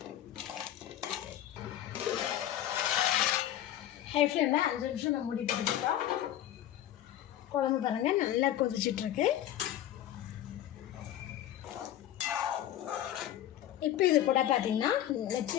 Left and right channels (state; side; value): quieter; right; 12.2 dB